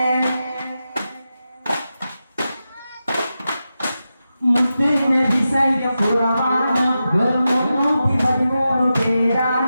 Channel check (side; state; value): both; inverted; correlation -0.91